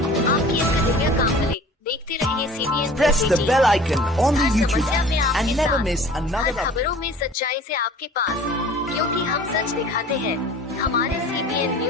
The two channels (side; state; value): both; normal; correlation 0.45